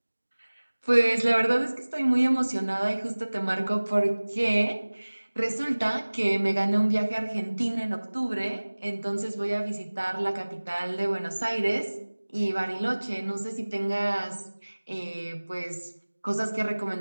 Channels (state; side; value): inverted; both; correlation -1.00